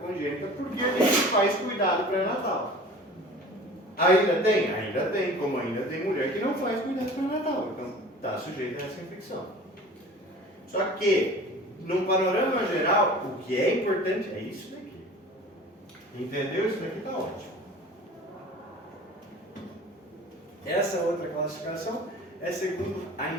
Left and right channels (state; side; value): normal; both; correlation 0.42